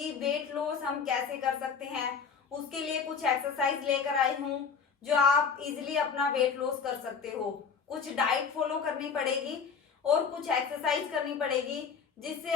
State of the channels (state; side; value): quieter; right; 6.0 dB